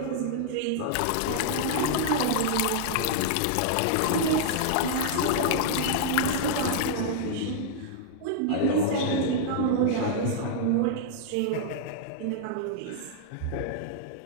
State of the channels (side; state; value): both; different; correlation -0.01